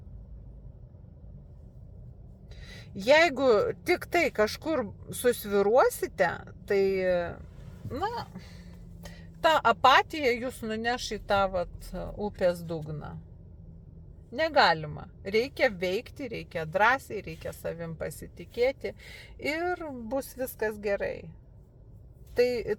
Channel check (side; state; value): both; identical; correlation 1.00